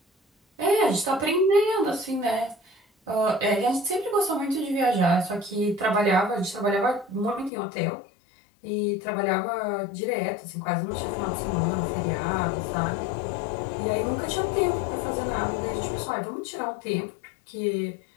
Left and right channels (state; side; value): drops out; right; at 7.5 s